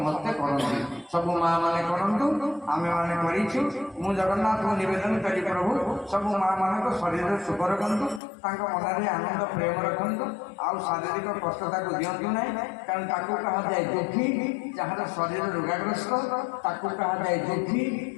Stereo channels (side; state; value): right; drops out; at 8.2 s